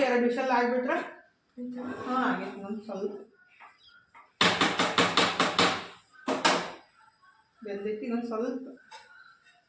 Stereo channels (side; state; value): both; identical; correlation 1.00